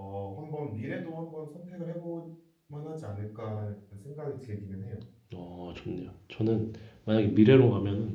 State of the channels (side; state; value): both; identical; correlation 1.00